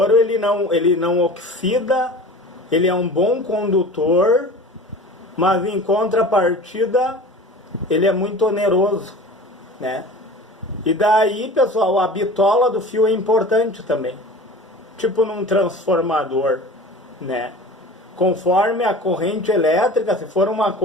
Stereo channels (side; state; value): both; normal; correlation 0.38